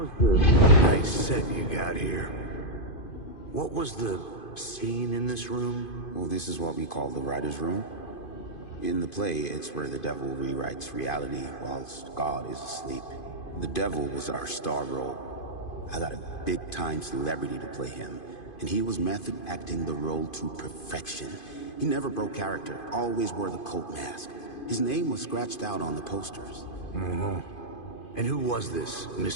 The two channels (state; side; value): late; right; 2.5 ms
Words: the nice set you got here? What was the scene in this room? Well, this is what we call the writer's room. In the play, it's where the devil rewrites reality whilst God is asleep. The devil was our star role. I got a big-time celebrity to play him, and he was method acting the role to perfection. He never broke character, always wore the cult mask. His name was scratched out on the posters. Mm-hmm. And who was this